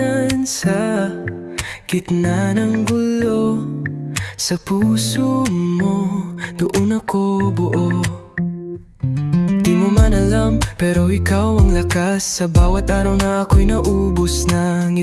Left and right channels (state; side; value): identical; both; correlation 1.00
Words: sa gitna ng gulo. Sa puso mo, doon ako buo. Di mo man alam, pero ikaw ang lakas. Sa bawat araw na ako'y naubos na.